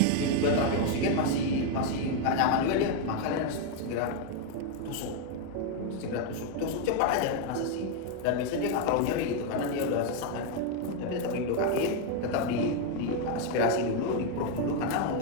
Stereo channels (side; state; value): both; different; correlation 0.01